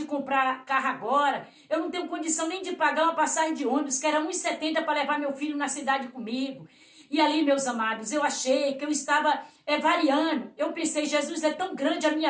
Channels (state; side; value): identical; both; correlation 1.00